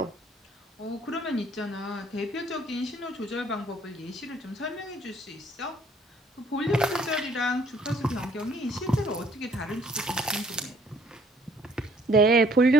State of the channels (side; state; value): both; normal; correlation 0.62